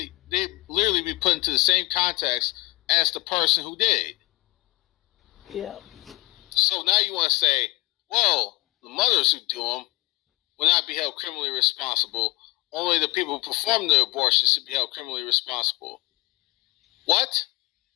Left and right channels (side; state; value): right; quieter; 23.0 dB